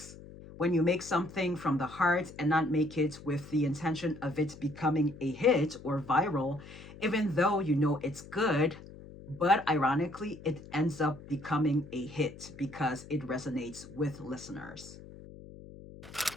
When you make something from the heart and not make it with the intention of it becoming a hit or viral, even though you know it's good, but ironically, it ends up becoming a hit because it resonates with listeners.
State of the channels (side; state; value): left; noise; hum, 17 dB below the sound